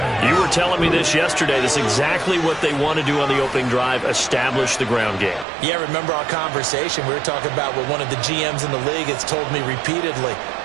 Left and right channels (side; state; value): left; drops out; at 5.5 s